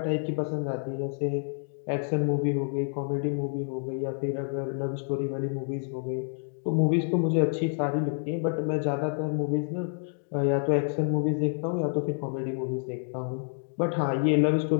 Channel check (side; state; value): right; silent; 59 dB below the other